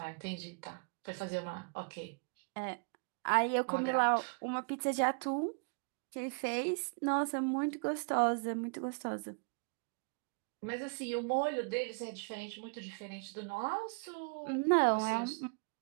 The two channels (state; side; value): quieter; left; 38.1 dB